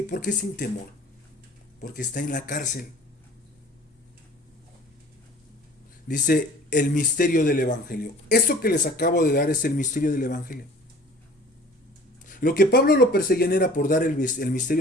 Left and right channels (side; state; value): both; normal; correlation 0.47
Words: ¿Por qué sin temor? Porque está en la cárcel. Dice el misterio del evangelio. Esto que les acabo de dar es el misterio del evangelio. Lo que Pablo lo perseguían era por dar el